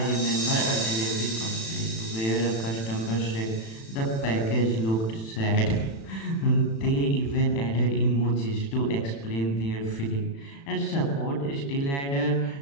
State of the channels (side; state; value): right; late; 36 ms